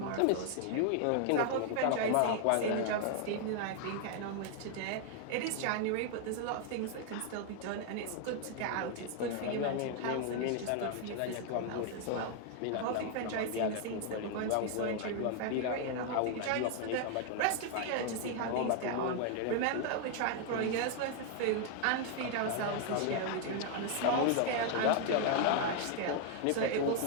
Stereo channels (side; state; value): both; different; correlation 0.00